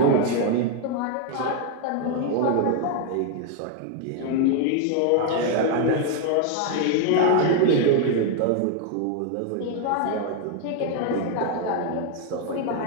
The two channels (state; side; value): different; both; correlation 0.01